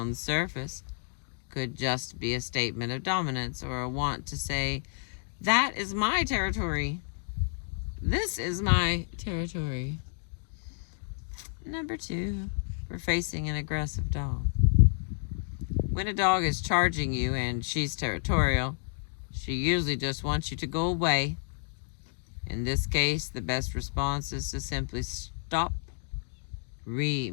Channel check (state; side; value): silent; right; digital silence